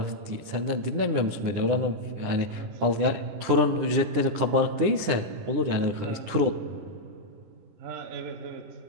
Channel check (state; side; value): late; left; 9.9 ms